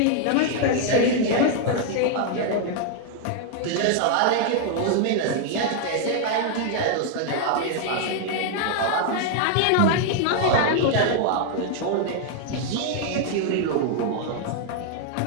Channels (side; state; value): both; different; correlation 0.00